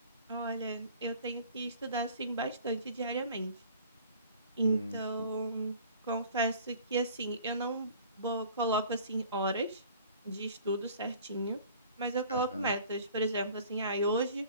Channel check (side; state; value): both; inverted; correlation -0.48